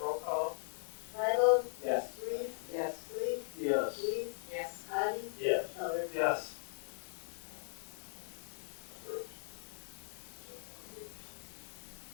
call. Bible. Yes. Reese, Yes. Sleep, Yes. Weiss, Yes. Patty. Yes. Elder. Yes.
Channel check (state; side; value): silent; right; digital silence